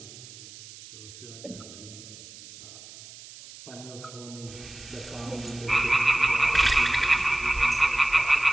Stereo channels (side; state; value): right; noise; hiss, 17 dB below the sound